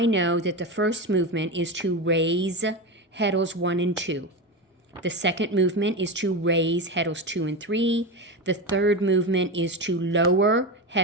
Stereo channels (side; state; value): both; normal; correlation 0.19